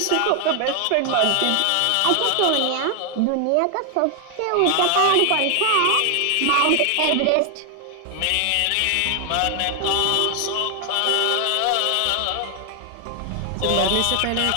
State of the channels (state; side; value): different; both; correlation 0.00